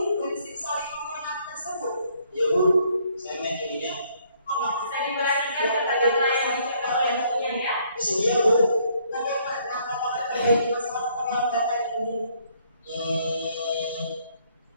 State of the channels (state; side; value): inverted; both; correlation -0.66